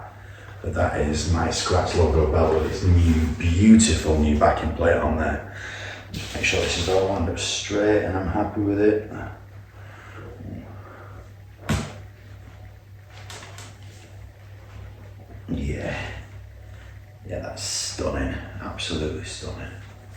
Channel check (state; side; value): identical; both; correlation 1.00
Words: But that is my Scratch logo belt with its new, beautiful new backing plate on there. Just make sure this is all lined up straight and I'm happy with it. Yeah, that's stunning, absolutely stunning.